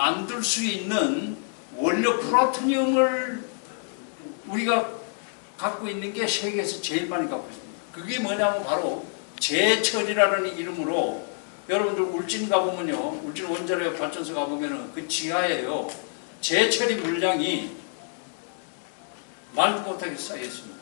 수 있는 원료 플루토늄을 우리가 갖고 있는 게 세계에서 제일 많이 갖고 있습니다. 그게 뭐냐면 바로 제철이라는 이름으로 여러분들 울진 가보면요, 울진 원자력 발전소 가보면은 그 지하에요 제철이 물량이 말도 못하게 쌓여 있습니다.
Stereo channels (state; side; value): silent; right; 60 dB below the other